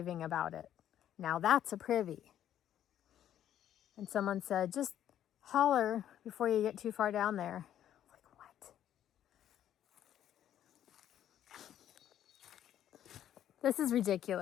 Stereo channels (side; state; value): right; quieter; 10.9 dB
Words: about it. Now that's a privy. And someone said, just holler before you get too far down there. Like, what? This is